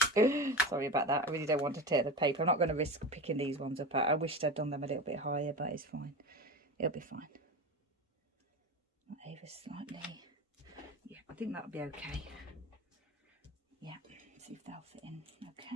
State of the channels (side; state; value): both; normal; correlation 0.27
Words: Sorry about that. I really don't want to tear the paper. I'm not going to risk picking these ones up. I wished I'd done them a little bit higher, but it's fine. It'll be fine. Not over slightly. Yeah, I think that'll be okay. Yeah, see if they'll fit in.